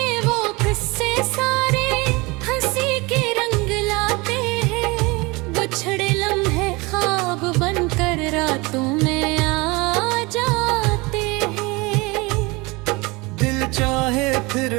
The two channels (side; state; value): left; quieter; 24.9 dB